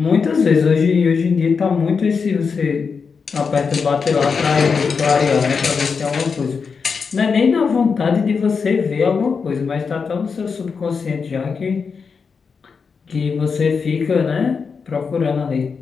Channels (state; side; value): quieter; right; 5.5 dB